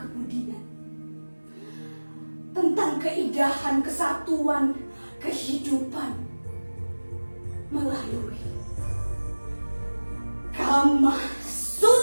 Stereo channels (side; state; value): both; inverted; correlation -1.00